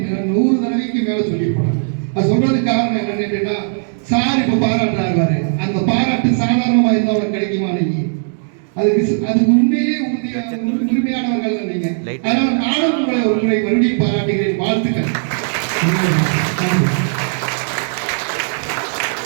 100 தடவைக்கு மேல சொல்லி போனேன். அது சொல்றதுக்கு காரணம் என்னன்னு கேட்டீங்கன்னா, சார் இப்ப பாராட்டுறாரு, அந்த பாராட்டு சாதாரணமா இருந்தா உனக்கு கிடைக்குமா? நீங்க அதுக்கு உண்மையிலேயே உரிமையானவர்கள் நீங்க. அதனால நானும் உங்களை ஒரு முறை மறுபடியும் பாராட்டுகிறேன். வாழ்த்துக்கள்.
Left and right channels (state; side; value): silent; left; digital silence